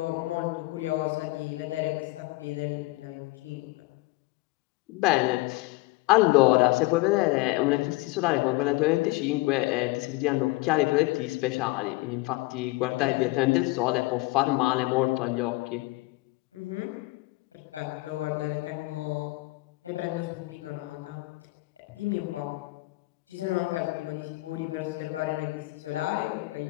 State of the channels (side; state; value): right; quieter; 21.9 dB